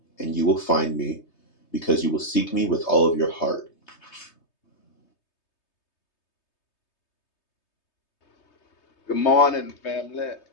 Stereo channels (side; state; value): right; late; 3.2 ms